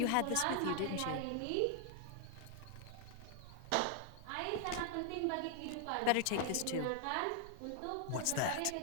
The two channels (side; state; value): both; different; correlation 0.00